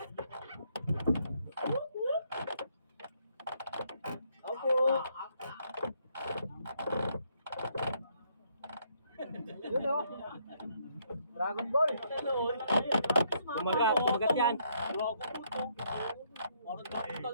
Dragon Ball. Kumagat yan.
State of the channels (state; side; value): inverted; both; correlation -0.71